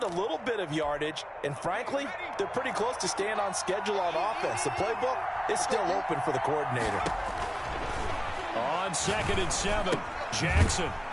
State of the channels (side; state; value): both; identical; correlation 1.00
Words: a little bit of yardage, and frankly, they're pretty close to staying on schedule on offense. The playbook is still open for the coordinator. On 2nd and 7, Jackson.